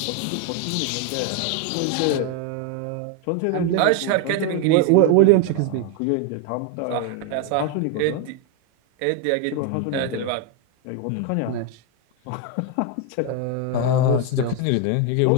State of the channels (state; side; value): different; both; correlation 0.01